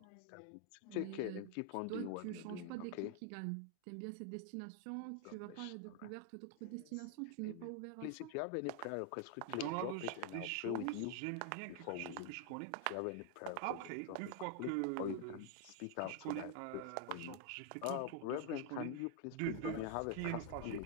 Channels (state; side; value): different; both; correlation 0.00